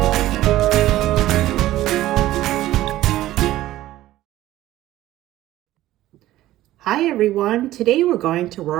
Hi everyone, today we're going to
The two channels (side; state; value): left; quieter; 15.0 dB